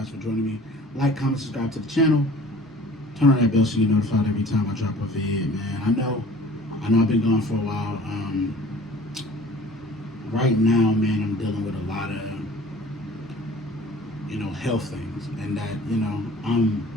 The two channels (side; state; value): both; normal; correlation 0.47